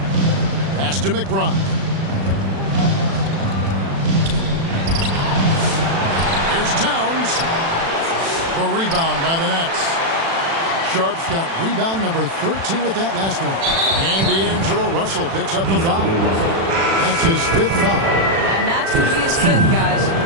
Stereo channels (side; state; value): left; late; 36 ms